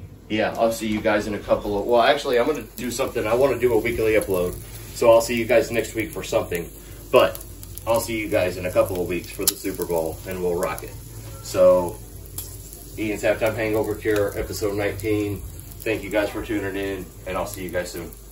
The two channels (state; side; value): identical; both; correlation 1.00